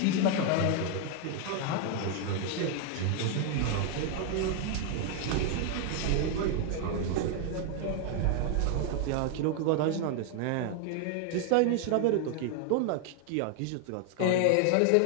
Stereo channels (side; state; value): both; different; correlation 0.00